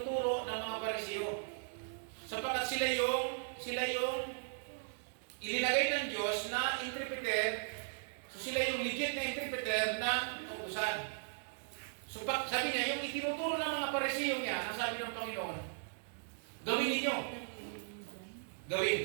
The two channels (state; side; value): silent; left; digital silence